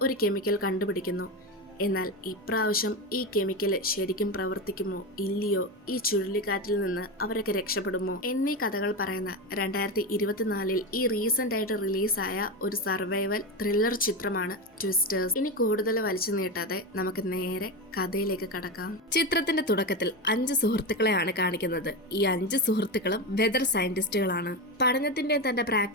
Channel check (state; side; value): normal; both; correlation 0.18